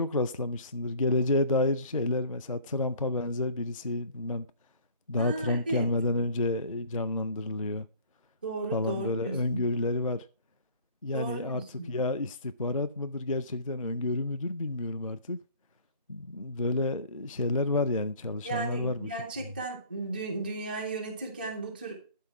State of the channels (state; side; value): inverted; both; correlation -0.49